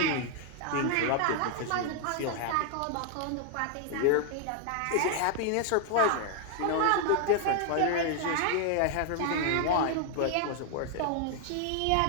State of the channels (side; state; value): both; different; correlation 0.00